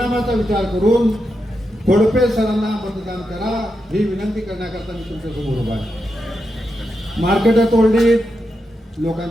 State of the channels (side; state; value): both; normal; correlation 0.86